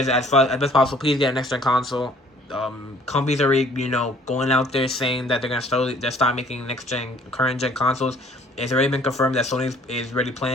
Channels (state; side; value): normal; both; correlation 0.58